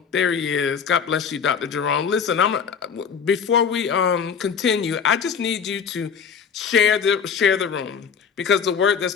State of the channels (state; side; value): quieter; right; 6.7 dB